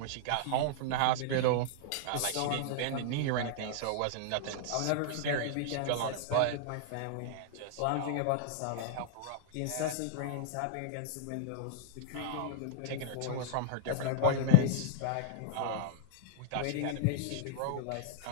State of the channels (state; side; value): different; both; correlation -0.02